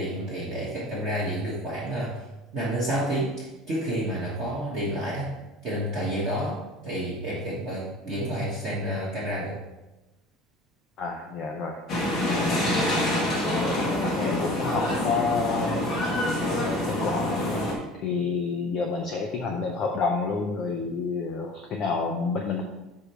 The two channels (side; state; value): both; normal; correlation 0.41